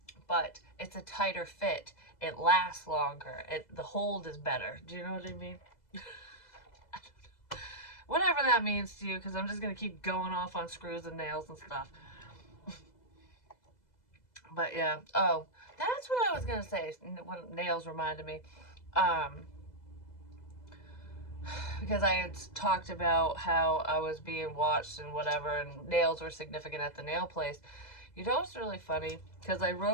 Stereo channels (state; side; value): late; right; 2.0 ms